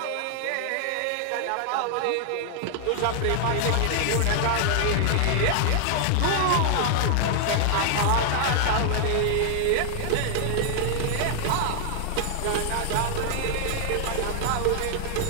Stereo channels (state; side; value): different; both; correlation 0.00